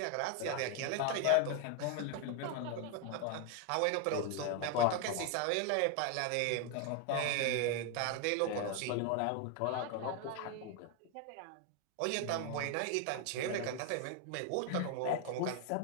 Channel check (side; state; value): both; different; correlation 0.01